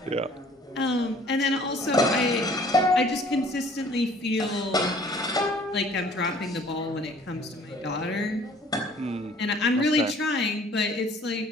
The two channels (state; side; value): normal; both; correlation 0.54